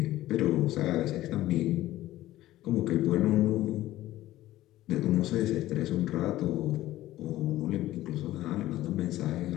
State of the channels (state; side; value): quieter; right; 15.4 dB